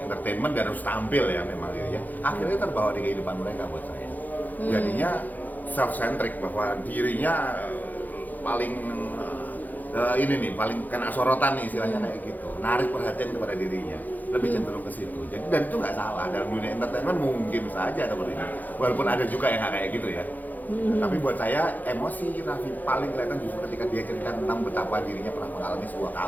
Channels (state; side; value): late; right; 0.083 ms